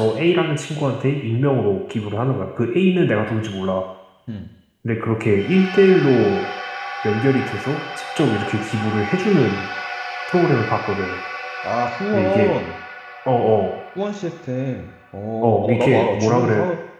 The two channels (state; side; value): identical; both; correlation 1.00